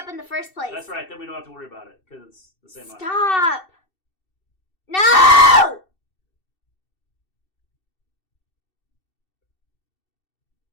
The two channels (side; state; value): right; late; 2.7 ms